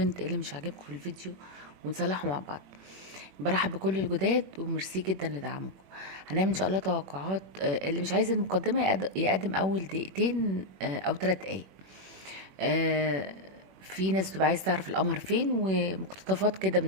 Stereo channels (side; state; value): left; late; 21 ms